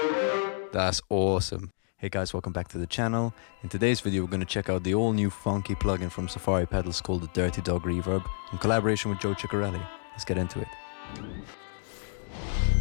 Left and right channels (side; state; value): right; silent; digital silence